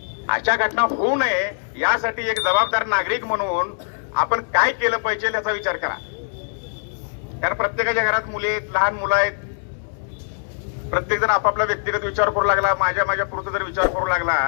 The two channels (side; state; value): right; silent; digital silence